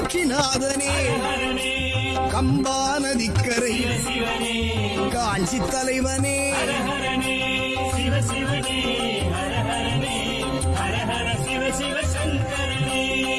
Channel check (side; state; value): both; identical; correlation 1.00